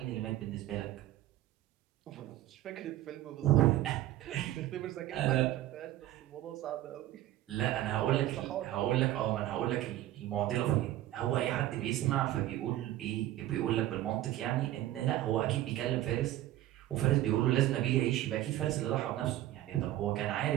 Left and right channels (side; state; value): left; quieter; 14.3 dB